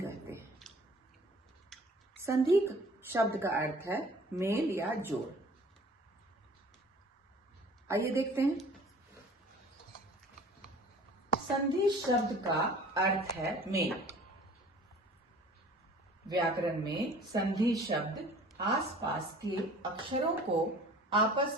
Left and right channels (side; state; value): both; normal; correlation 0.48